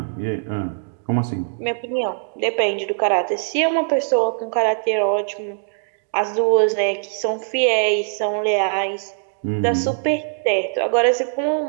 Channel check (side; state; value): left; silent; digital silence